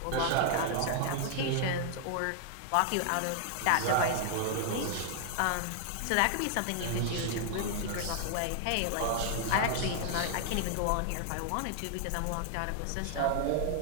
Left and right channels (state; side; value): different; both; correlation 0.00